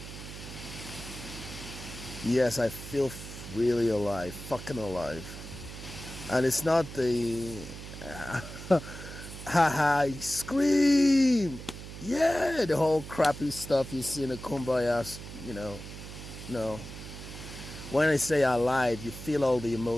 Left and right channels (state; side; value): noise; right; hum, 12 dB below the sound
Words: Yes, I feel really alive, fucking alive. And it's not the haha, scream, yeah, the whole crappy stuff you see in the Kumbaya, no. When I say alive, you feel all the